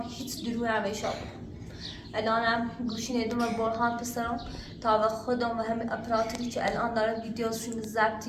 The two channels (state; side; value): identical; both; correlation 1.00